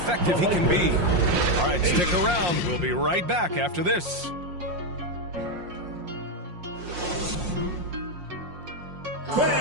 he can be. All right, stick around. We'll be right back after this.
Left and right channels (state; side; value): late; left; 5.6 ms